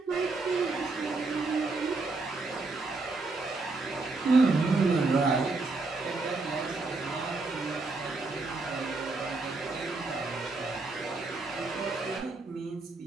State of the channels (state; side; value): quieter; left; 3.6 dB